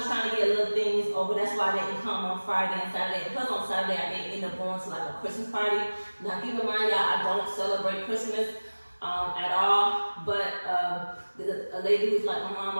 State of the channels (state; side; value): inverted; both; correlation -1.00